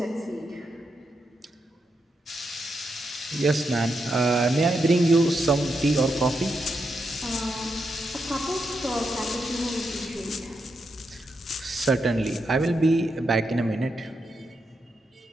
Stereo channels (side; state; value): both; normal; correlation 0.83